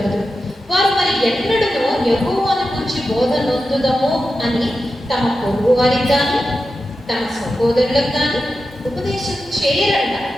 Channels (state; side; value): normal; both; correlation 0.91